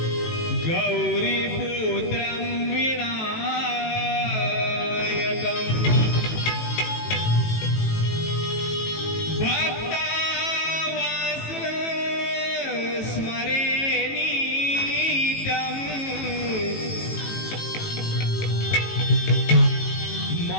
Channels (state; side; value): late; right; 18 ms